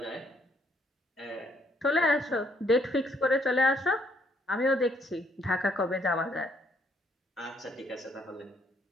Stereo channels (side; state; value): both; normal; correlation 0.69